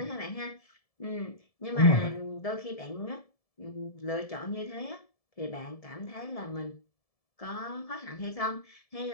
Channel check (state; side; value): late; right; 1.7 ms